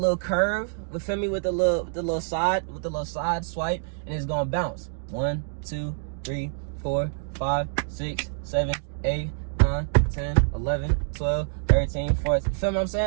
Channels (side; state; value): left; silent; digital silence